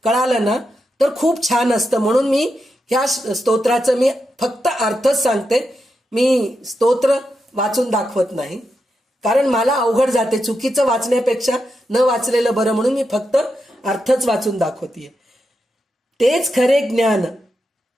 कळाला ना तर खूप छान असतं. म्हणून मी ह्या स्तोत्राचं मी फक्त अर्थच सांगते, मी स्तोत्र वाचून दाखवत नाही, कारण मला अवघड जाते. चुकीचं वाचण्यापेक्षा न वाचलेलं बरं, म्हणून मी फक्त अर्थच वाचून दाखवतीये. तेच खरे ज्ञान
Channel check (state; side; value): normal; both; correlation 0.86